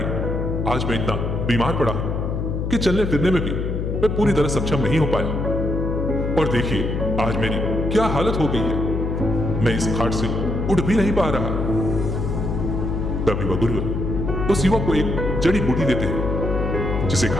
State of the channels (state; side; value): noise; left; hum, 2 dB below the sound